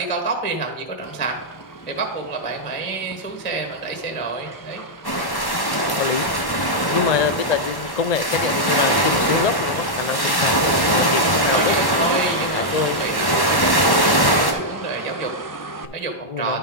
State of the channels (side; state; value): right; late; 1.1 ms